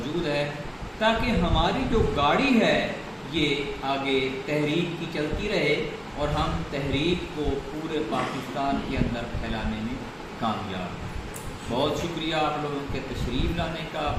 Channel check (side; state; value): both; identical; correlation 1.00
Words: ہے، تاکہ ہماری جو گاڑی ہے یہ آگے تحریک کی چلتی رہے اور ہم تحریک کو پورے پاکستان کے اندر پھیلانے میں کامیاب ہیں۔ بہت شکریہ آپ لوگوں کے تشریف لانے کا،